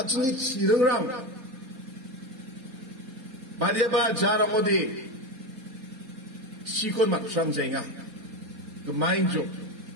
chirungrang bariaba jaramodi sikon matsang jenga gemain jo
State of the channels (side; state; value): left; late; 4.2 ms